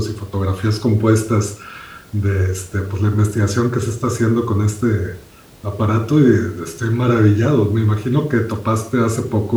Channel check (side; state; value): both; identical; correlation 1.00